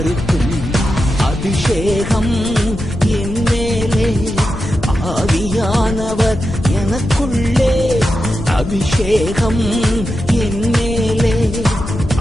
அபிஷேகம் என் மேலே, ஆவியானவர் எனக்குள்ளே. அபிஷேகம் என் மேலே,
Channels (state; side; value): noise; left; rumble, 8 dB below the sound